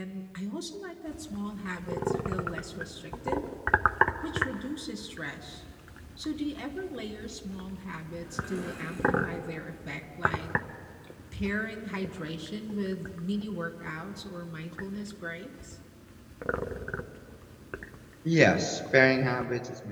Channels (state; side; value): identical; both; correlation 1.00